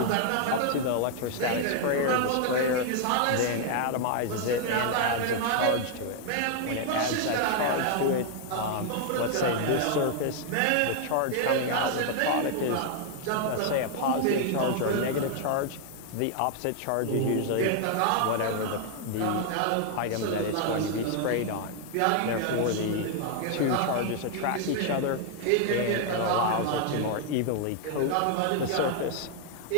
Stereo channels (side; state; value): both; different; correlation 0.00